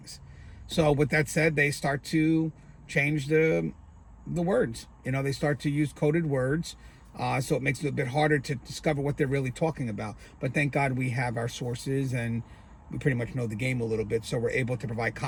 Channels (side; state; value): both; identical; correlation 1.00